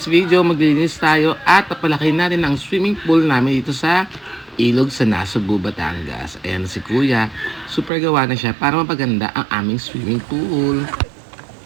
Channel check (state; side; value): drops out; left; at 7.9 s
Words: video, maglilinis tayo at papalaki natin ang swimming pool namin dito sa ilog sa Nasugbu, Batangas. Ayan si Kuya, super gawa na siya para mapaganda ang aming swimming pool.